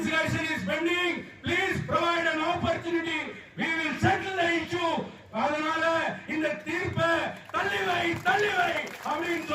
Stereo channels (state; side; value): identical; both; correlation 1.00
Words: is bending, please provide an opportunity, we will settle the issue. அதனால இந்த தீர்ப்பை தள்ளிவை அப்படின்னு